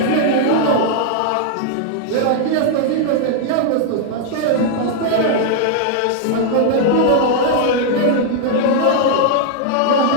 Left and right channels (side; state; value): both; different; correlation -0.01